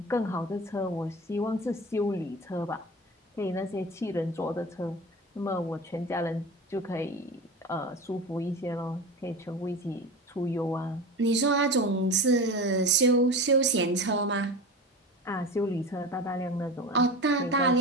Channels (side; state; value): both; normal; correlation 0.30